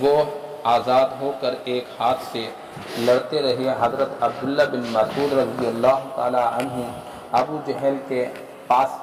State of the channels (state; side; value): identical; both; correlation 1.00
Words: وہ آزاد ہو کر ایک ہاتھ سے لڑتے رہے۔ حضرت عبداللہ بن مسعود رضی اللہ تعالی عنہ ابو جہل کے پاس